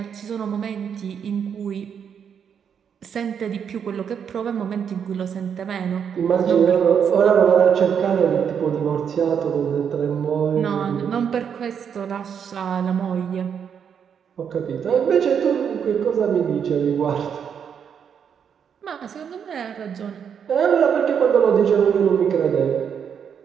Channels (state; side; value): quieter; left; 7.6 dB